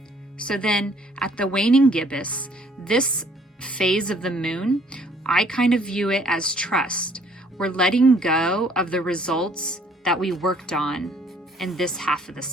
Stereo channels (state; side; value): normal; both; correlation 0.61